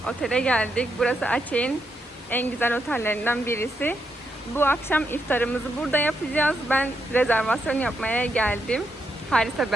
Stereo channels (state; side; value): normal; both; correlation 0.80